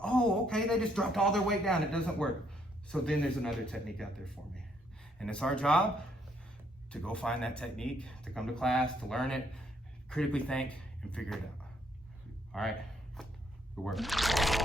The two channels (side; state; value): both; normal; correlation 0.70